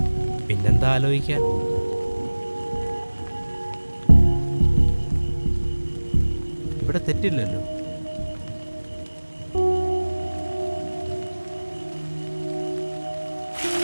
പിന്നെന്താ ആലോചിക്കാൻ? ഇവിടെ തെറ്റില്ലല്ലോ.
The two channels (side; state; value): both; inverted; correlation -1.00